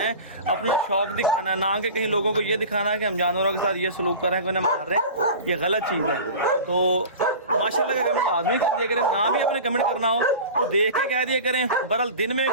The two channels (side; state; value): both; inverted; correlation -0.35